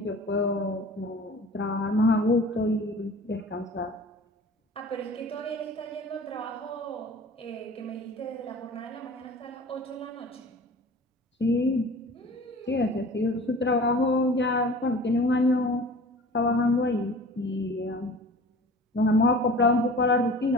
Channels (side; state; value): both; normal; correlation 0.42